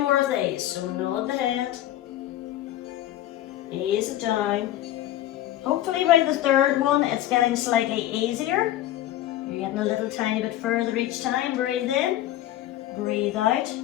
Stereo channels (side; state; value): right; quieter; 13.5 dB